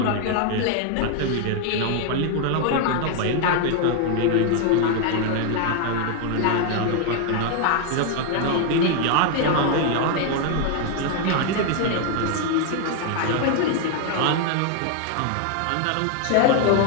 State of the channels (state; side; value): different; both; correlation 0.00